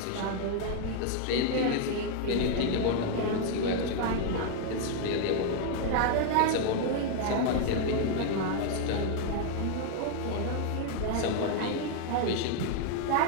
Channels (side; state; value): both; different; correlation 0.00